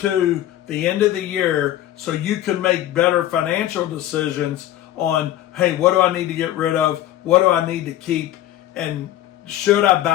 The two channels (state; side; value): quieter; right; 13.2 dB